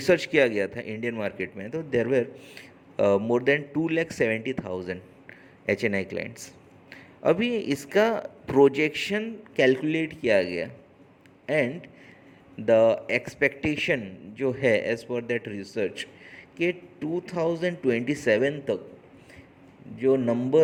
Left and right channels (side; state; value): both; identical; correlation 1.00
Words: किया गया था इंडियन मार्केट में, तो there were more than 2,70,000 HNI clients. अभी इसका प्रोजेक्शन कैलकुलेट किया गया एंड द एक्सपेक्टेशन जो है एज पर दैट रिसर्च कि 2027 तक जो